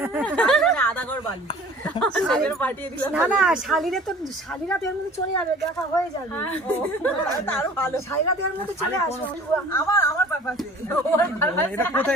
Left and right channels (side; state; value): both; normal; correlation 0.47